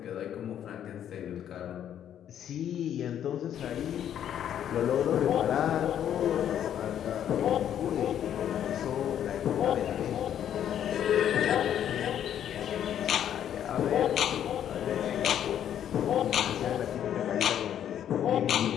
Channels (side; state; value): right; quieter; 10.0 dB